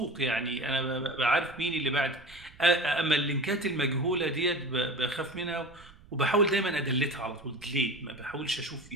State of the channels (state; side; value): noise; right; rumble, 23 dB below the sound